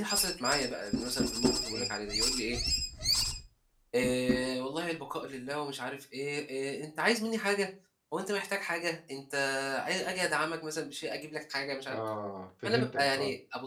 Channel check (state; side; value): identical; both; correlation 1.00